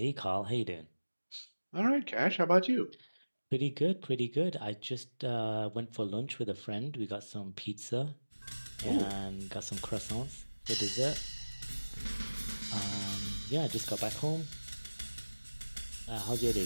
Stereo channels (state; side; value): inverted; both; correlation -1.00